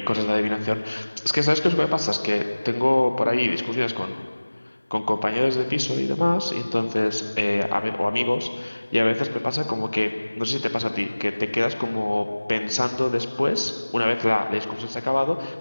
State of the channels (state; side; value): inverted; both; correlation -1.00